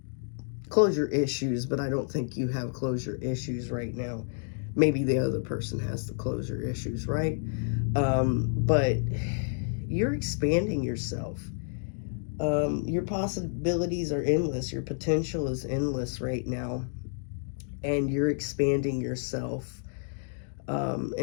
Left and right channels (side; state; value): right; silent; digital silence